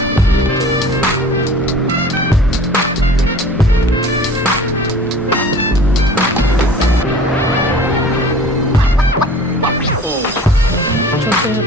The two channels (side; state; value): both; normal; correlation 0.44